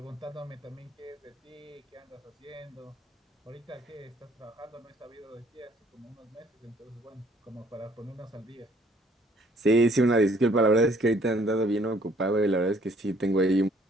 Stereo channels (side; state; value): both; normal; correlation 0.61